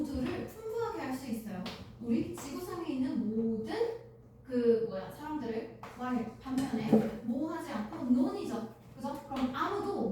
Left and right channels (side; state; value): both; identical; correlation 1.00